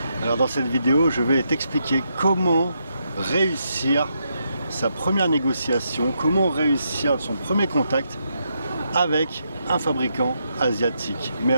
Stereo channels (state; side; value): inverted; both; correlation -0.81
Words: Alors dans cette vidéo, je vais t'expliquer comment réussir sa première négociation, comment réussir son premier contact avec un fabricant asiatique. Mais